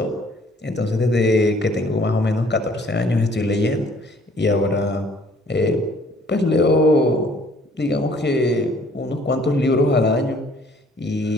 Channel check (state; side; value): normal; both; correlation 0.59